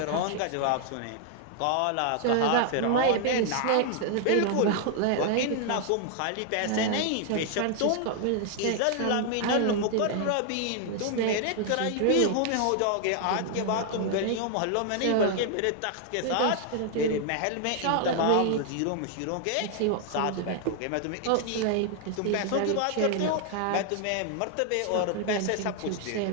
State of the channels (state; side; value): different; both; correlation 0.00